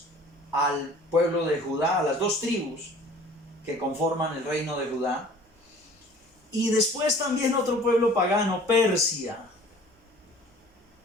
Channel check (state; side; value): normal; both; correlation 0.48